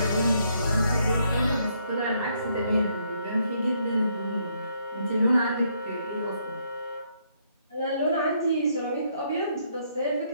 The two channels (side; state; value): both; inverted; correlation -0.72